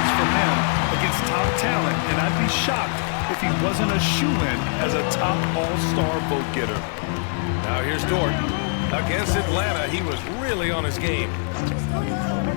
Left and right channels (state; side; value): silent; right; 56 dB below the other